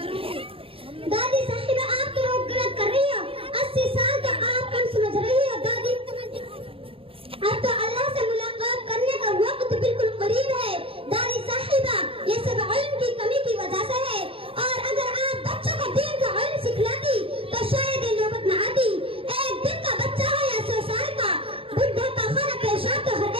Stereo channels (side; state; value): left; late; 0.27 ms